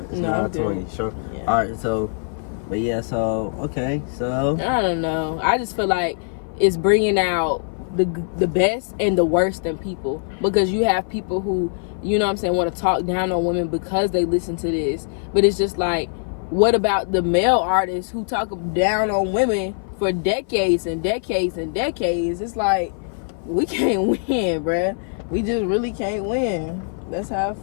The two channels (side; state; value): right; silent; 56 dB below the other